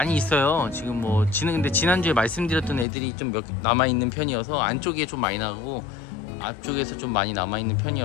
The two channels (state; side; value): drops out; right; at 2.9 s